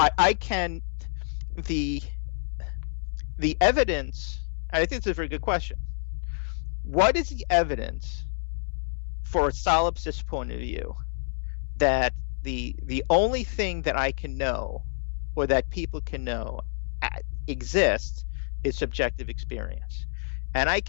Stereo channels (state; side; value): silent; right; 59 dB below the other